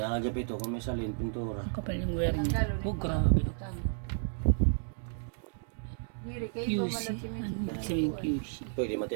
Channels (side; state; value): left; silent; digital silence